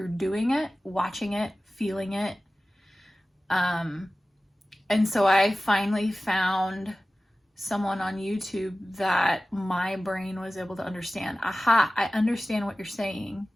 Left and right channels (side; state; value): both; normal; correlation 0.96